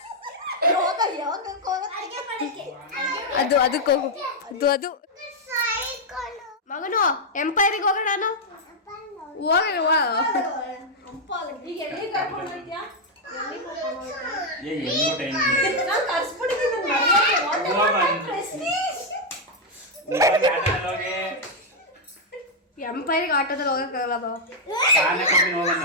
ಅದಕ್ಕೆ ಹೋಗು. ಅದು ಮಗನು ಎಂಪೈರಿಗೆ ಹೋಗೋಣ. ನಾನು ಎಂಪೈರಿಗೆ ಆಟೋದಲ್ಲಿ ಹೋಗಕ್ಕಾಗಲ್ಲ.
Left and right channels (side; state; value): both; normal; correlation -0.01